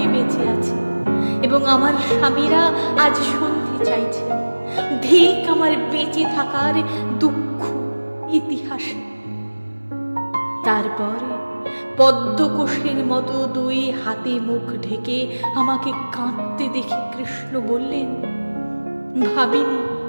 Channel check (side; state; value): both; inverted; correlation -1.00